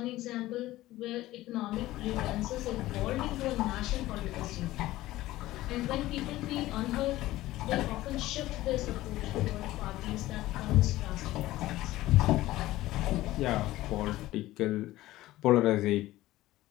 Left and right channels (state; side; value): quieter; right; 16.5 dB